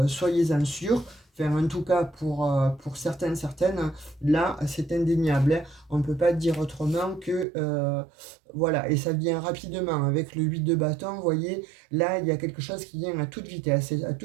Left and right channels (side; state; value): left; drops out; at 7.5 s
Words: soyez-en sûrs. Enfin, en tout cas, pour certaines, là, c'est indéniable, hein. On ne peut pas dire autrement que... voilà, et ça vient rapidement. Avec le 8 de bâton, vous voyez, là, il y a quelque chose qui vient à toute vitesse. Et à